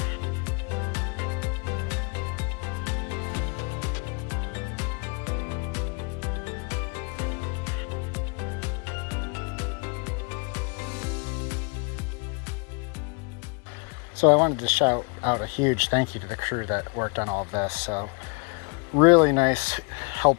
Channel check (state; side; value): quieter; right; 34.4 dB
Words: So I wanted to shout out a huge thank you to the crew that worked on all of this. So really nice,